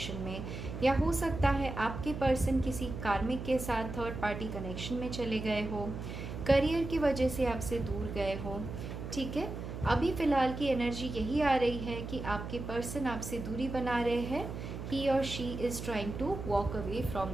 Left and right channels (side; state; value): right; noise; hum, 7 dB below the sound